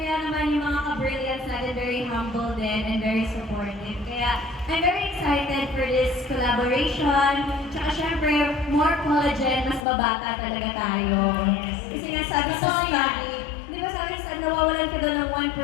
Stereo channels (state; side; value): drops out; right; at 9.9 s